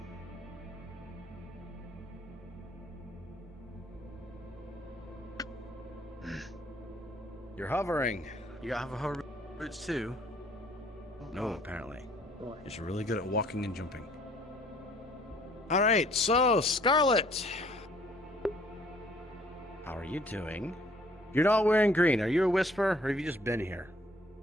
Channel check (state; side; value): normal; both; correlation 0.59